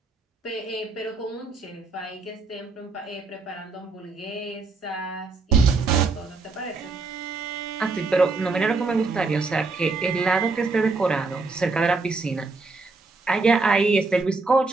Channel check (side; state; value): left; quieter; 3.9 dB